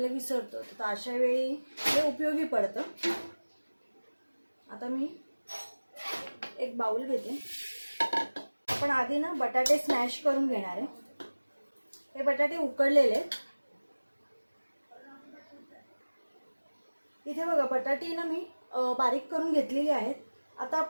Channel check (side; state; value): both; inverted; correlation -1.00